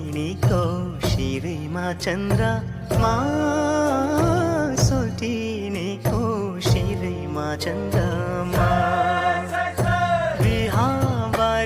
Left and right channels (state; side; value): identical; both; correlation 1.00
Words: शिरमा चन्द्रमा सोल्टिनीको शिरमा चन्द्रमा